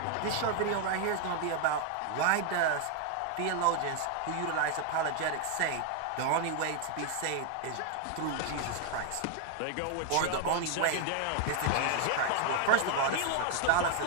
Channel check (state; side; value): different; both; correlation 0.00